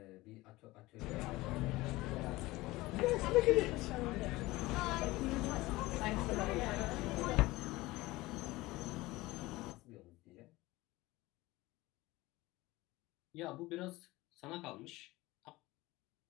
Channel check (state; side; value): quieter; right; 19.7 dB